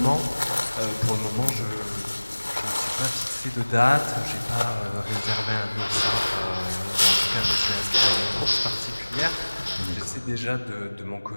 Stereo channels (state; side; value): inverted; both; correlation -1.00